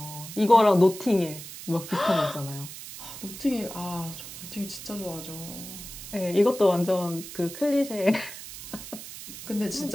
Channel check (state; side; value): noise; right; hiss, 12 dB below the sound